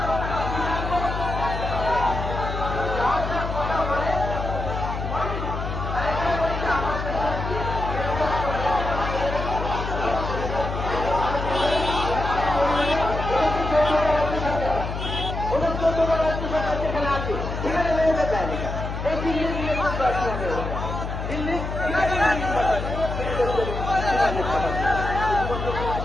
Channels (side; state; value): left; noise; hum, 5 dB below the sound